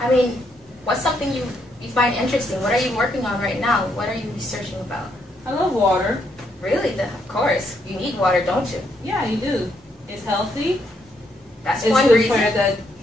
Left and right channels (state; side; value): normal; both; correlation 0.75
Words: I mean, what's something you find interesting? What are you working on right now? What are you researching about? I love water. Really? Of course. You need water, don't you? Yeah, you do. It's healthy. That's it's one good reason. for the